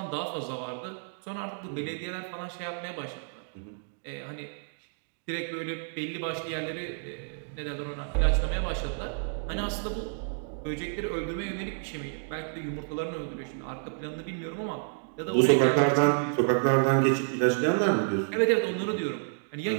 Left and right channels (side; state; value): left; silent; digital silence